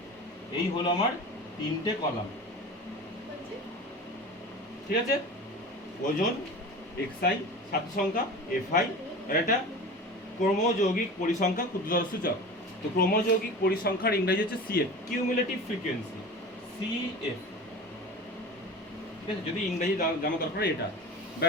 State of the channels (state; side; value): normal; both; correlation 0.35